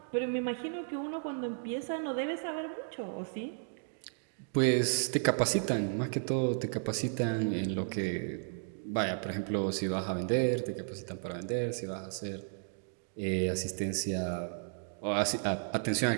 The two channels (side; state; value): left; silent; digital silence